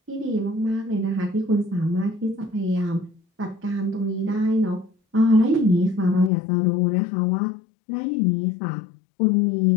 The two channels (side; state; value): right; drops out; at 6.3 s